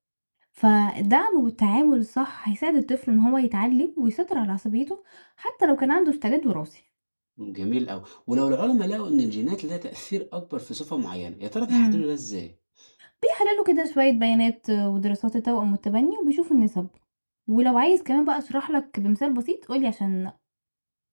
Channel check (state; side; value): inverted; both; correlation -1.00